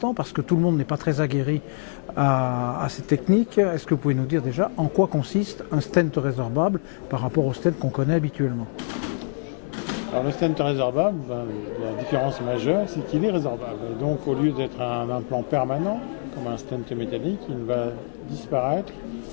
parce que tout le monde n'est pas très aguerri à ces techniques, est-ce que vous pouvez nous dire déjà en quoi consiste un stent résorbable par rapport au stent qu'on connaît habituellement? Alors le stent résorbable, la différence majeure, c'est qu'il est résorbable. Et donc au lieu d'être un implant permanent, comme un stent métallique, il va disparaître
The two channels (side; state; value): right; silent; 62 dB below the other